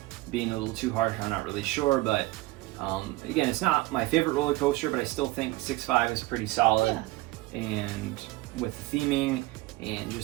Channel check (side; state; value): left; quieter; 19.9 dB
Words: being a little too harsh, I'm not really sure, but again, it's not my favorite roller coaster, but I still think 6.5 is pretty solid. Yeah. And with the theming and